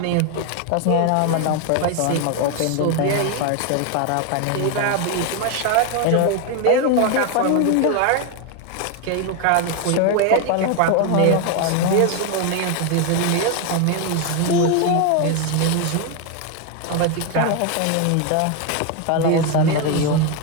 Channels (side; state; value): both; different; correlation 0.01